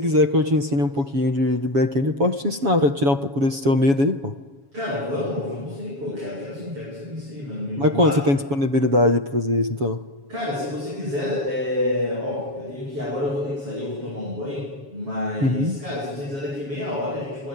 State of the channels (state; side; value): late; left; 7.2 ms